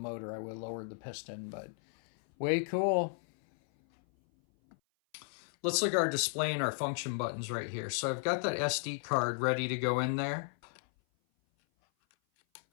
I would have lowered the piston, but way cool. Let's look at our display and our function buttons right here. So I've got that SD card ready to go in there.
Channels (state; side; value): silent; right; 55 dB below the other